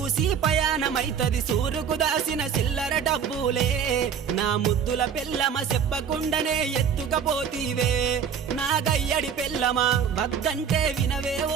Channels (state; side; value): quieter; left; 7.4 dB